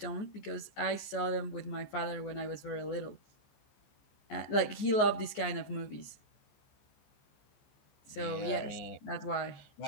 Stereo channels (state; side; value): late; right; 14 ms